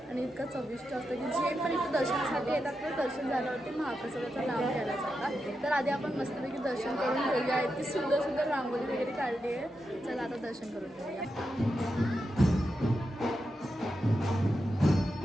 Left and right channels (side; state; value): both; normal; correlation 0.87